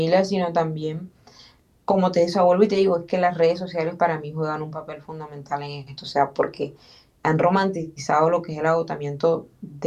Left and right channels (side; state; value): both; identical; correlation 1.00